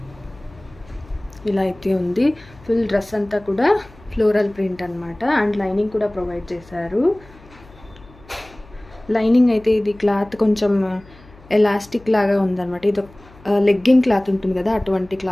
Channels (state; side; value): noise; left; hum, 24 dB below the sound